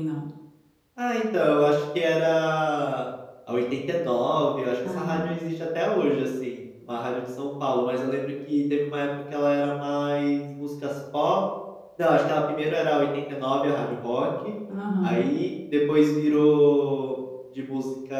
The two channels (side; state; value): both; identical; correlation 1.00